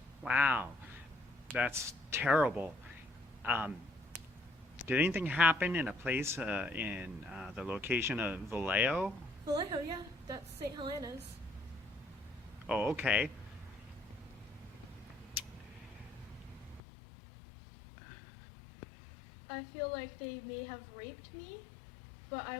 Wow, that's terrible. Did anything happen in a place in the location of Vallejo? Vallejo, yeah, that's St. Helena's. Oh, okay. I feel like they may have raped me, but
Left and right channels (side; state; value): right; drops out; at 16.8 s